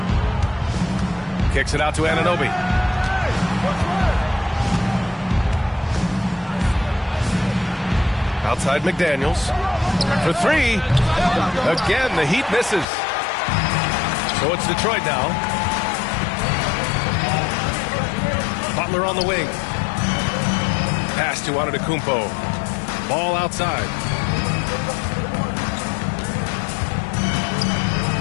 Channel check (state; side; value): drops out; right; at 12.9 s